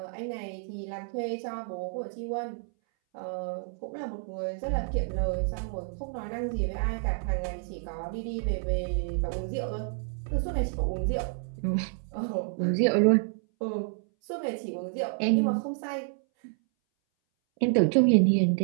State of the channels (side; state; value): left; silent; 58 dB below the other